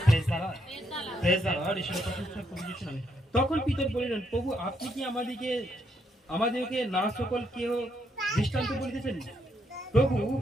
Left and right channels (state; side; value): normal; both; correlation 0.76